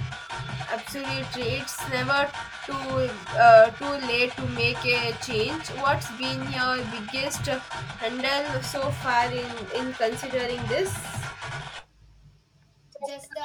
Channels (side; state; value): both; identical; correlation 1.00